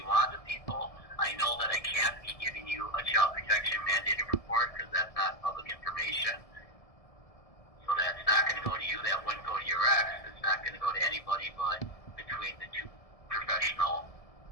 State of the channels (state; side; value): late; right; 1.7 ms